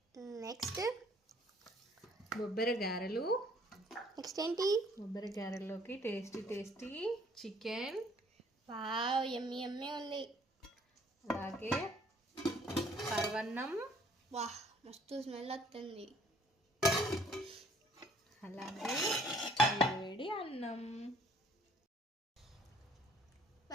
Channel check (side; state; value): both; normal; correlation 0.60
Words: నెక్స్ట్ బొబ్బెర గారెలు. నెక్స్ట్ ఏంటి? బొబ్బెర గారెల్లోకి టేస్టీ చికెన్, వావ్ యమ్మీ యమ్మీ ఉంది. అలాగే పరవన్నం, వాహ్ మస్తు స్మెల్ వస్తుంది. అలాగే వేడి అన్నం.